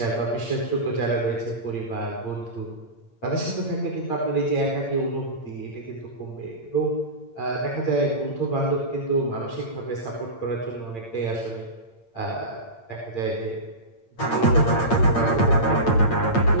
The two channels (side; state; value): right; late; 8.8 ms